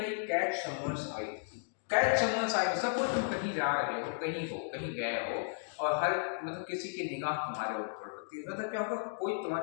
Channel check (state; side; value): silent; right; digital silence